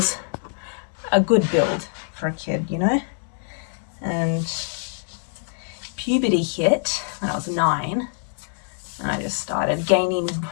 a good build for a kid, and puberty hit when I was 9, and I just started gaining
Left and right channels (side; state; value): right; silent; 62 dB below the other